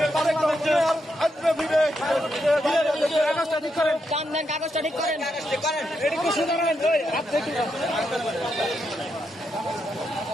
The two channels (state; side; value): normal; both; correlation 0.82